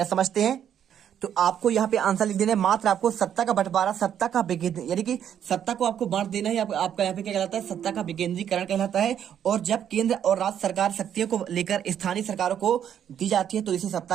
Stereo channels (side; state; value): left; quieter; 9.4 dB